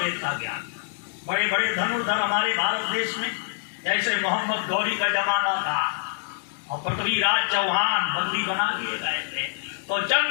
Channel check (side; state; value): right; silent; digital silence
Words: का ज्ञान। बड़े बड़े धनुर्धर हमारे भारत देश में जैसे मोहम्मद गौरी का जमाना था और पृथ्वीराज चौहान बंदी बना लिए गए थे, तो